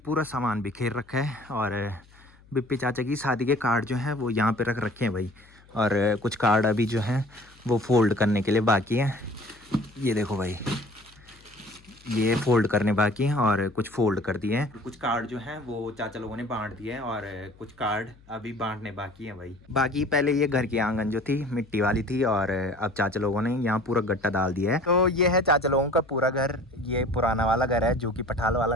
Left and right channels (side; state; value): left; noise; hum, 27 dB below the sound